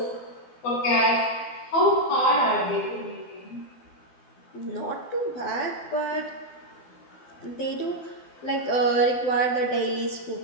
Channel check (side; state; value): right; late; 12 ms